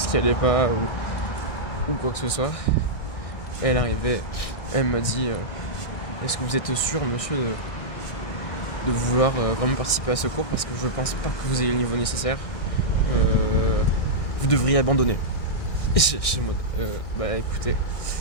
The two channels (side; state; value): right; late; 1.6 ms